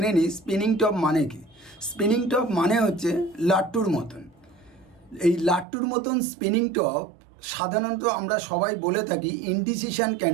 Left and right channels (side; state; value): left; drops out; at 5.7 s